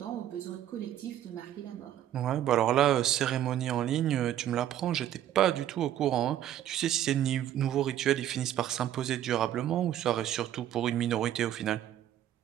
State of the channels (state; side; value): quieter; left; 11.5 dB